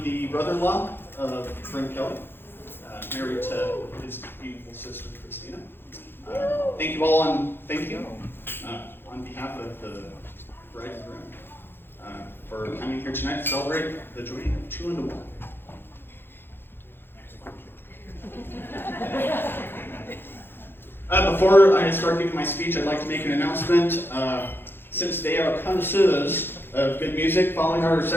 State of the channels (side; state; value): right; late; 0.10 ms